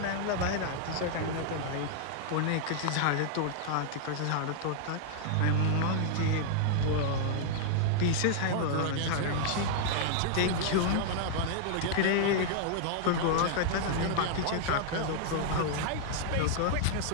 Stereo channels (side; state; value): both; different; correlation -0.01